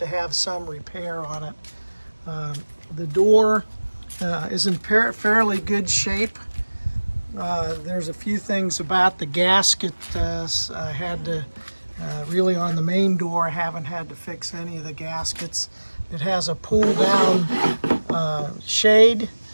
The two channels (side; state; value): both; inverted; correlation -1.00